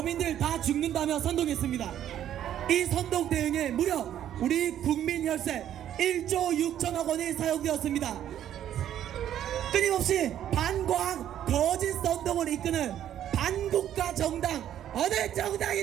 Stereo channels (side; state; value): left; quieter; 10.9 dB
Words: 다 죽는다며 선동했습니다. 이 선동 대응에 무려 우리 국민 혈세 1조 6천억 원이 사용되었습니다. 끊임없이 반과학 거짓 선동을 이끄는 반국가 정당 어느